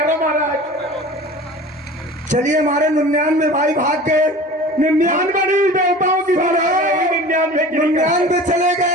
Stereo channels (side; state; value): both; normal; correlation 0.39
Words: महाराज। चलिए हमारे 99 भाई भाग गए, 99 नहीं, देवताओं की 99 चले